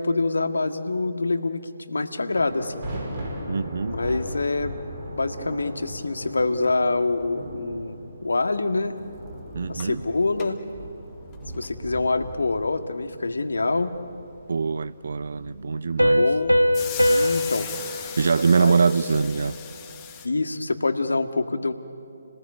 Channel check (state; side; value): inverted; both; correlation -0.90